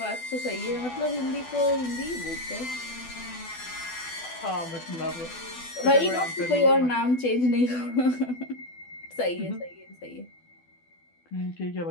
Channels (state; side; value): late; right; 12 ms